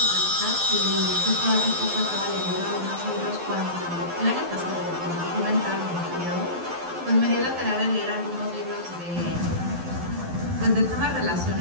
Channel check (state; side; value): late; left; 12 ms